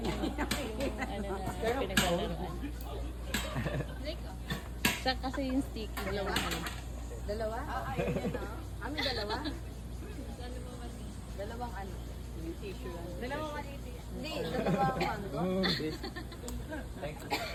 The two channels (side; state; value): both; identical; correlation 1.00